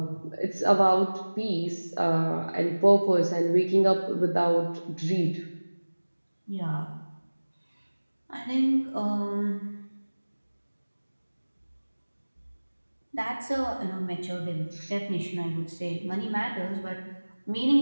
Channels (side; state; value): both; inverted; correlation -1.00